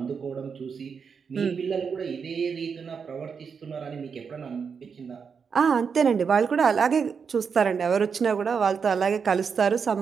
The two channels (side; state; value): left; quieter; 6.1 dB